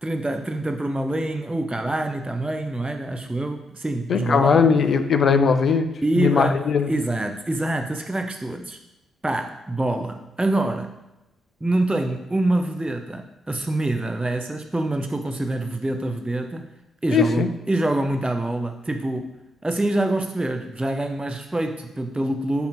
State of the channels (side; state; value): both; normal; correlation 0.80